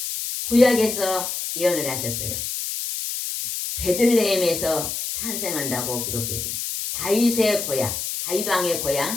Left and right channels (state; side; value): noise; left; hiss, 4 dB below the sound